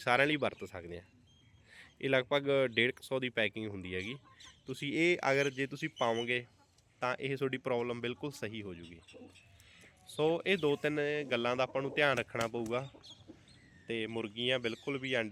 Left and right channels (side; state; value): both; identical; correlation 1.00